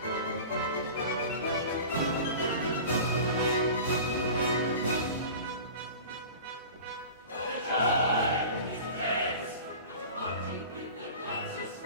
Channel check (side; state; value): both; inverted; correlation -0.37